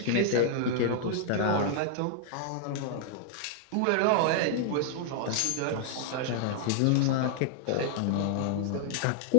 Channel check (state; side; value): different; both; correlation -0.01